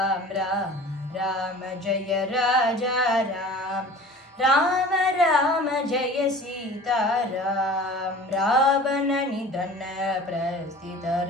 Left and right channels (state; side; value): normal; both; correlation 0.42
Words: राम राम जय राजा राम राम राम जय सीताराम रावणनिधन